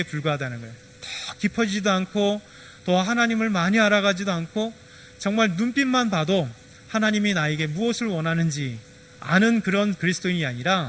불과하다는 거예요. 더 깊어지지도 않고 더 하나님을 많이 알아가지도 않고, 정말 눈빛만 봐도 하나님이 나에게 무엇을 원하는지 아는 그런 그리스도인이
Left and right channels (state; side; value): identical; both; correlation 1.00